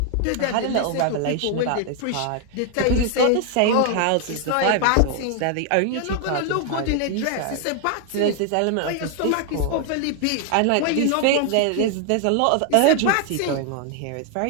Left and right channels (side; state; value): both; different; correlation 0.00